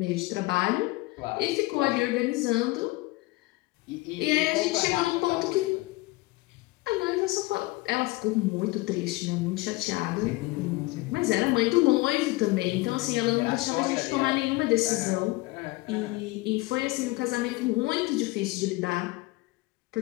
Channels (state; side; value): quieter; right; 21.3 dB